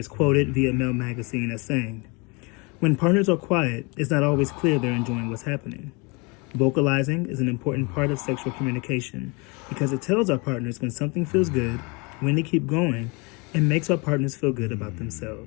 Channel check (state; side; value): quieter; right; 29.1 dB